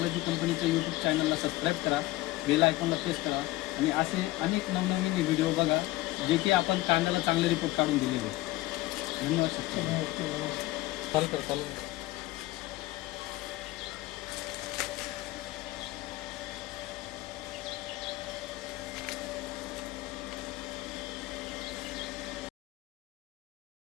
कंपनीचं यूट्यूब चॅनलला सबस्क्राईब करा, बेल आयकॉनला प्रेस करा आणि असे अनेक नवनवीन व्हिडिओ बघा जे की आपण कांद्याला चांगले रिपोर्ट काढून दिलेले. धन्यवाद शेतकरी. ओके. चालू कर.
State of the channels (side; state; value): right; quieter; 18.3 dB